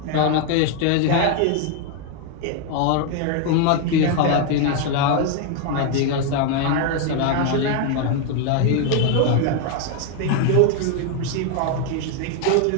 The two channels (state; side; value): different; both; correlation 0.01